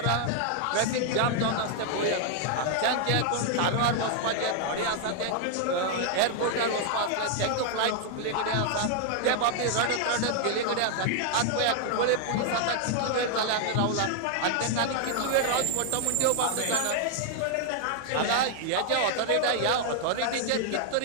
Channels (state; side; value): different; both; correlation 0.00